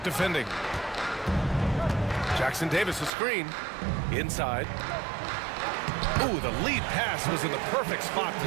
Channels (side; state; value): left; drops out; at 3.1 s